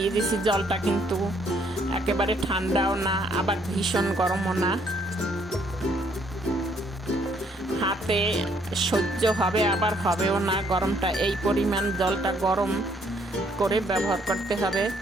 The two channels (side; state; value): both; normal; correlation 0.67